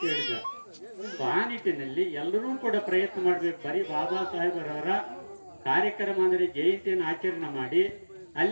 ಹೇಳಿದ್ದಾರೆ. ಆ ನಿಟ್ಟಿನಲ್ಲಿ ಎಲ್ಲರೂ ಕೂಡ ಪ್ರಯತ್ನ ಮಾಡಬೇಕು. ಬರೀ ಬಾಬಾ ಸಾಹೇಬರವರ ಕಾರ್ಯಕ್ರಮ ಅಂದರೆ ಜಯಂತಿಯನ್ನು ಆಚರಣೆ ಮಾಡಿ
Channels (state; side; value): inverted; both; correlation -1.00